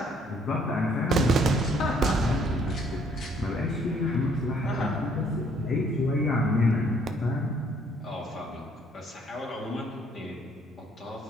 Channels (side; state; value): both; normal; correlation 0.64